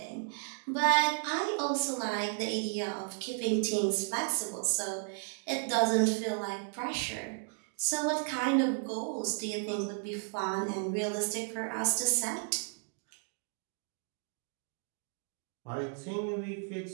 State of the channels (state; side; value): silent; left; 55 dB below the other